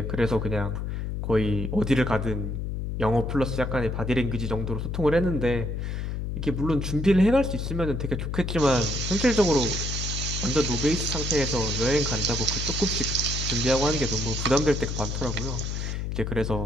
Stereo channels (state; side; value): noise; left; hum, 3 dB below the sound